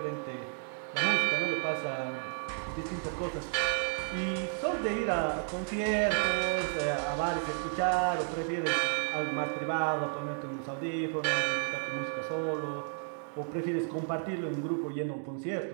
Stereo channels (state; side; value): silent; left; 56 dB below the other